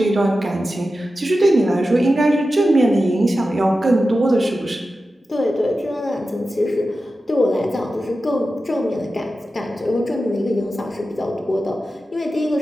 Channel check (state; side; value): normal; both; correlation 0.93